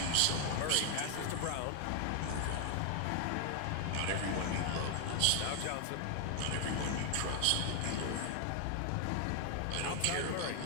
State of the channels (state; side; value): different; both; correlation 0.00